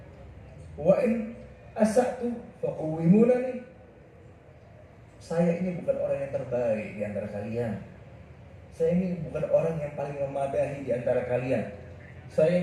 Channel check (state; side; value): identical; both; correlation 1.00